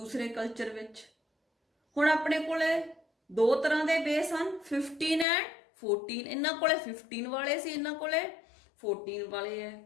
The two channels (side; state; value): right; drops out; at 5.2 s